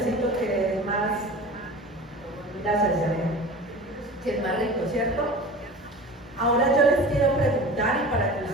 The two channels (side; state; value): both; normal; correlation 0.36